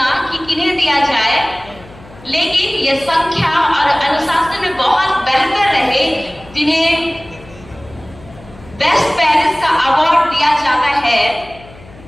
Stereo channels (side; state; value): left; noise; hum, 21 dB below the sound